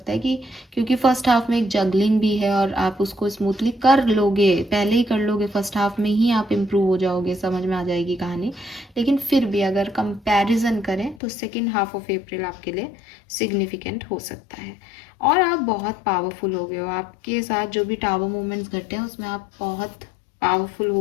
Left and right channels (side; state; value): right; drops out; at 11.2 s